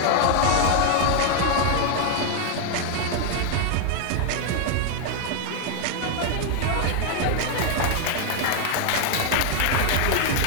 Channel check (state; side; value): different; both; correlation 0.00